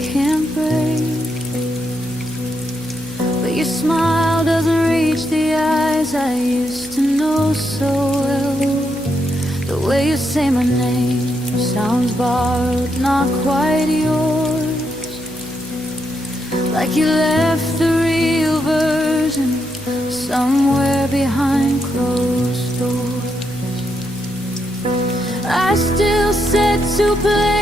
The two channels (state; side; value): noise; left; hum, 18 dB below the sound